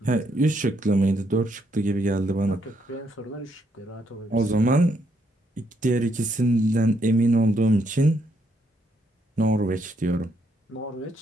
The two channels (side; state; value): both; normal; correlation 0.74